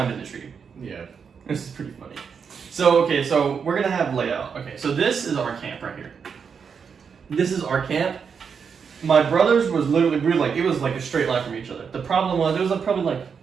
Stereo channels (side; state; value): left; quieter; 6.3 dB